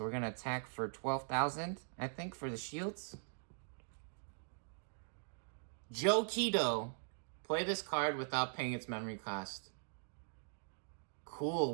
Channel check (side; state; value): left; silent; digital silence